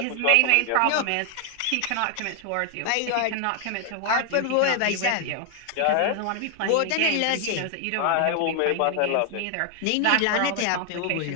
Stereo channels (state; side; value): different; both; correlation 0.00